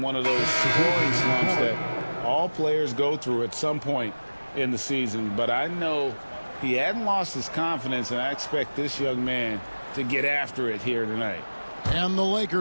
one of those scoring slumps that all players go through at some point in the season. But I know he hadn't lost his confidence, and I expect this young man to get after it here tonight. And the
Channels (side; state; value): both; inverted; correlation -1.00